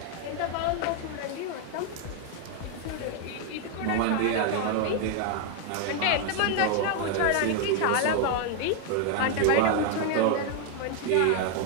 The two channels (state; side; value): different; both; correlation 0.01